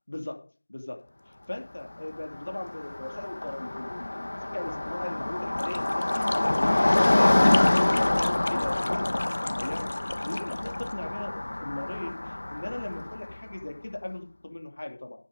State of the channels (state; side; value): inverted; both; correlation -1.00